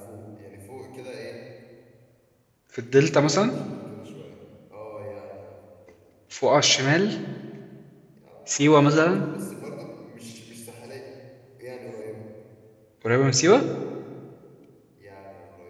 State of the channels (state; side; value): identical; both; correlation 1.00